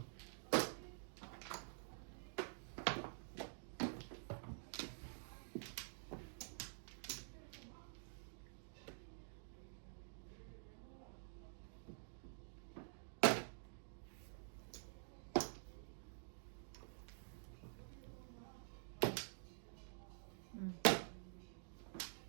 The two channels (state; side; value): silent; left; digital silence